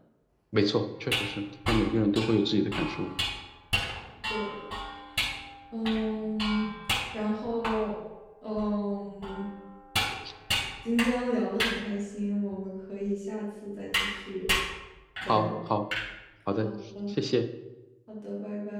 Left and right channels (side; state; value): both; identical; correlation 1.00